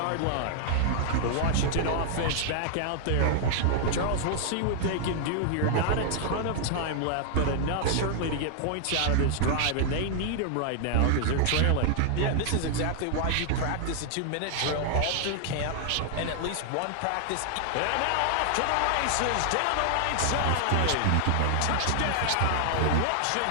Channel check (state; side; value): different; both; correlation -0.01